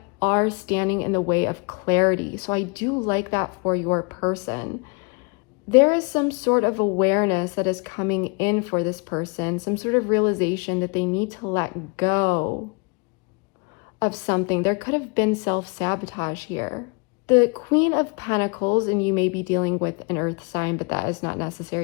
are standing in the way of clarity. So I do like that for your person. There is some sort of awareness that is coming in for this person, some sort of realization that they need to let go of something. There could have been self-sabotage here. The Queen of Pentacles, and you may be dealing with an earth sign, but that is not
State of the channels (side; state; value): right; quieter; 33.2 dB